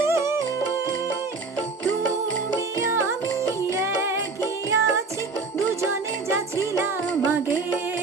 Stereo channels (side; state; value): left; quieter; 4.0 dB